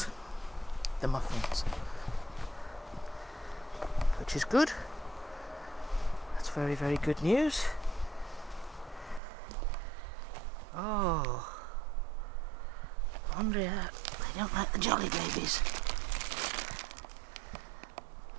the muffins, which is good. That's very, very good news. Oh, I wonder if they don't like the jolly babies.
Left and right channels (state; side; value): drops out; left; at 9.2 s